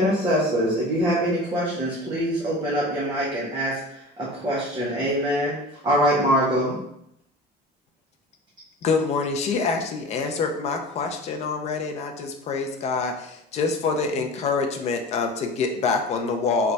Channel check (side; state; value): both; normal; correlation 0.35